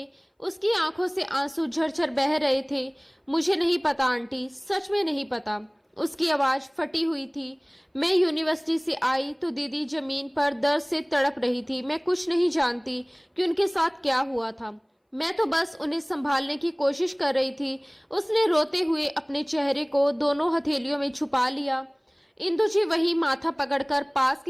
उसकी आंखों से आंसू झरझर बह रहे थे। मुझे नहीं पता आंटी, सच में नहीं पता। उसकी आवाज फटी हुई थी। मैं यूनिवर्सिटी से आई तो दीदी जमीन पर दर्द से तड़प रही थी। मैं कुछ नहीं जानती कि उनके साथ क्या हुआ था। मैं तो बस उन्हें संभालने की कोशिश कर रही थी। उसने रोते हुए अपने चेहरे को दोनों हथेलियों में छुपा लिया। इंदु जी वही माथा पकड़कर पास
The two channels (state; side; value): identical; both; correlation 1.00